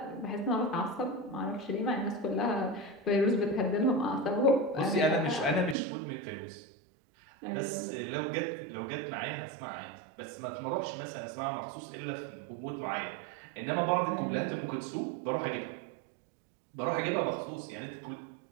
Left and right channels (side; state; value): left; drops out; at 5.8 s